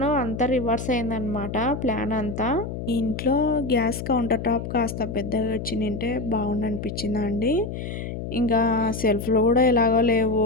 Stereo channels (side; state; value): left; noise; hum, 6 dB below the sound